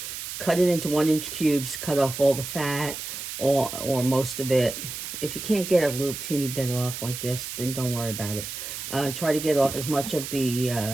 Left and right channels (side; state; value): right; noise; hiss, 7 dB below the sound